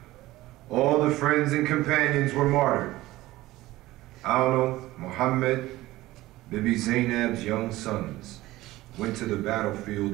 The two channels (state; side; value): quieter; left; 17.4 dB